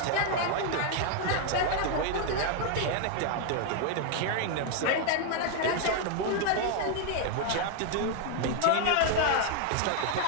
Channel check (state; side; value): different; both; correlation 0.00